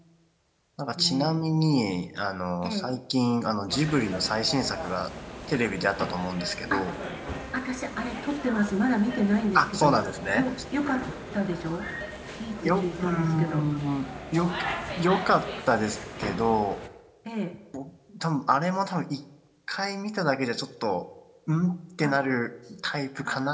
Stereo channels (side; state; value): both; identical; correlation 1.00